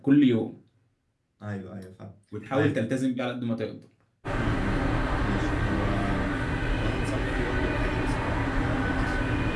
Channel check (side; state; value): both; identical; correlation 1.00